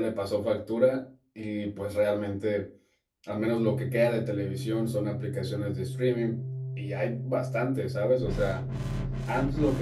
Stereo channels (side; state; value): both; identical; correlation 1.00